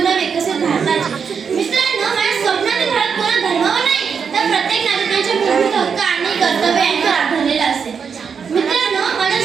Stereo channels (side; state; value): left; quieter; 6.4 dB